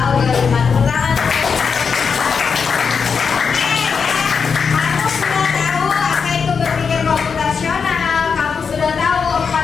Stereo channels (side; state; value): right; quieter; 5.8 dB